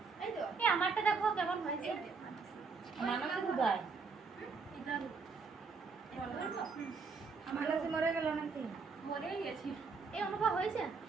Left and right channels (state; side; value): quieter; left; 4.8 dB